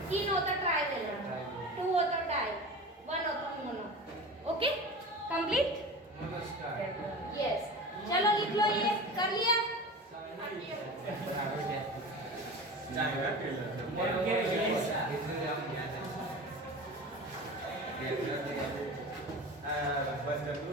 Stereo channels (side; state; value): both; normal; correlation 0.32